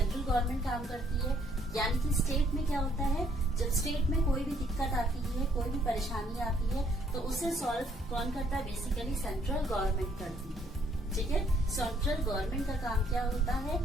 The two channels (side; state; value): both; normal; correlation 0.66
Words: काम करती है। यानी कि स्टेट में क्या होता है, जब स्टेट में कोई भी दिक्कत आती है, कोई भी परेशानी आती है, तो उसे सॉल्व कौन करता है, बेसिकली सेंट्रल गवर्नमेंट करती है, ठीक है। सेंट्रल गवर्नमेंट का काम क्या होता है,